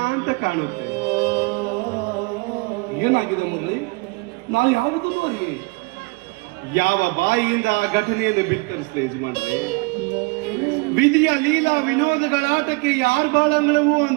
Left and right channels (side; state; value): left; quieter; 28.4 dB